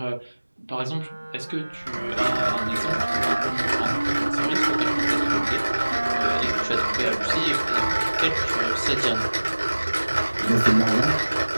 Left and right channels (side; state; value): both; inverted; correlation -1.00